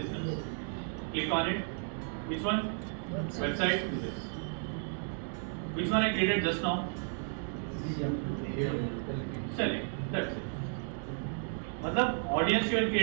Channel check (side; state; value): left; silent; 55 dB below the other